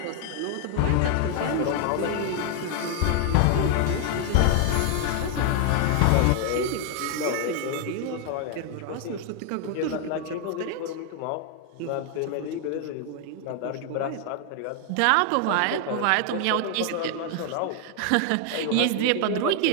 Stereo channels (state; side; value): different; both; correlation 0.00